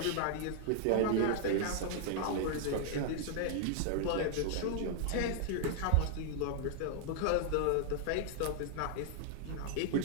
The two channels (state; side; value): different; both; correlation -0.01